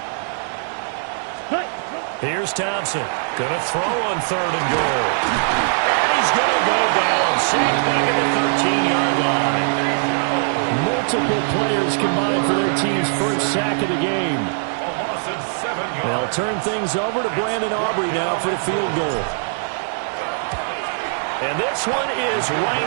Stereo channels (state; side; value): silent; left; 59 dB below the other